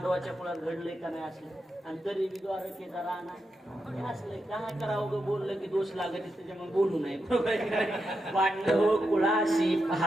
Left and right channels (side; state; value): both; normal; correlation 0.86